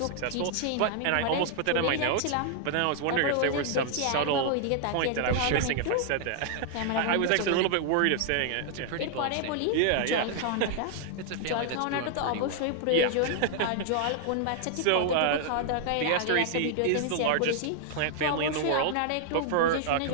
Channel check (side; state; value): both; different; correlation 0.00